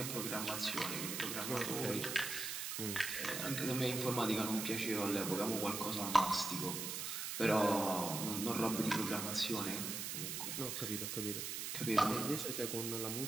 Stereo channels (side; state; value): right; noise; hiss, 3 dB below the sound